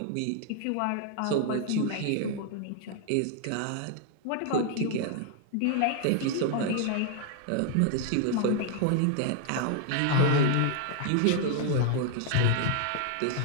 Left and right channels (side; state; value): both; different; correlation 0.00